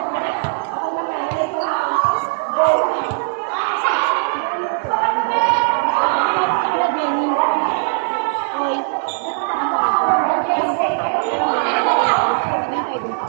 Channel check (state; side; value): silent; left; digital silence